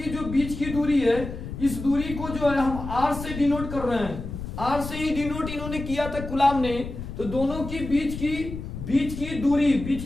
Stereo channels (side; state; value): left; noise; rumble, 8 dB below the sound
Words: जो बीच की दूरी है, इस दूरी को जो है हम R से डिनोट कर रहे हैं। R से ही डिनोट इन्होंने किया था कुलाम ने। तो दोनों की बीच की